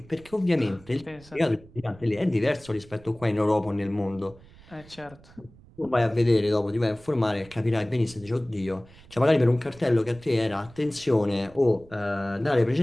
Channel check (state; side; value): noise; right; rumble, 23 dB below the sound